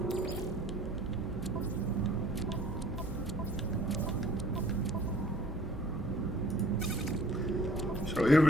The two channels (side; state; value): both; normal; correlation 0.52